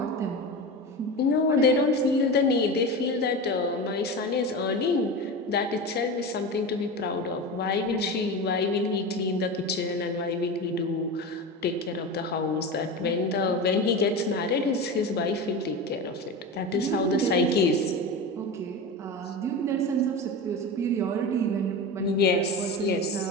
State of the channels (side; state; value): both; normal; correlation 0.25